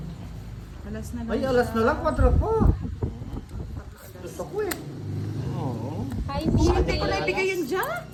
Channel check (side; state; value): both; identical; correlation 1.00